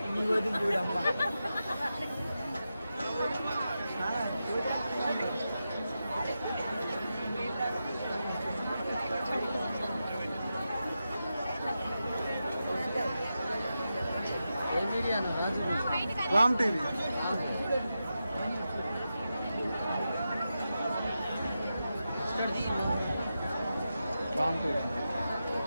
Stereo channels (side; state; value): both; inverted; correlation -0.90